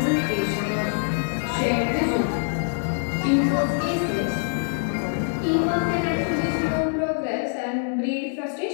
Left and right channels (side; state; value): right; silent; 62 dB below the other